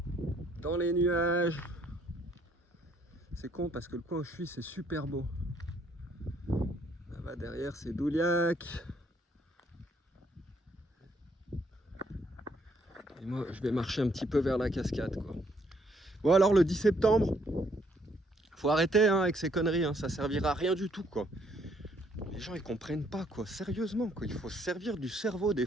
Dans les nuages. C'est con parce que le coin où je suis, c'est super beau. Là-bas derrière, c'est Douliac. Et moi, je vais marcher un petit peu vers la cascade, quoi. Bon, alors le 10 septembre, faut arrêter hein, avec ces conneries, hein. Ça servira à rien du tout, quoi. Les gens, ils comprennent pas, quoi. Sérieusement, quoi. Il faut se servir du cerveau. Des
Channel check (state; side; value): normal; both; correlation 0.68